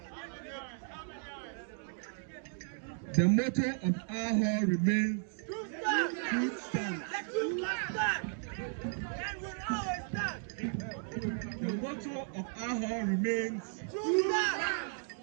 The motto of our hall remains truth stands. The motto of our hall remains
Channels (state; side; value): silent; left; 54 dB below the other